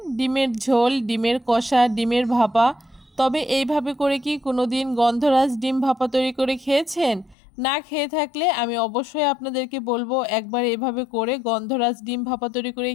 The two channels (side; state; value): right; drops out; at 7.4 s